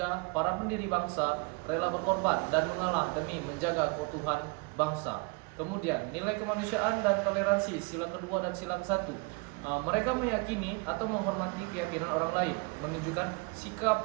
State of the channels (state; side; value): quieter; left; 29.9 dB